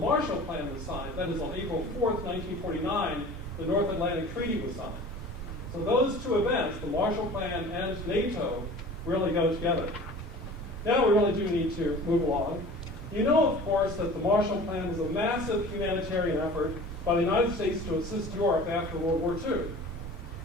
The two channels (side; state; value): both; normal; correlation 0.42